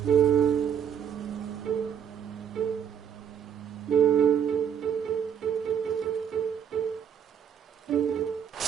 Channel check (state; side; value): quieter; left; 8.3 dB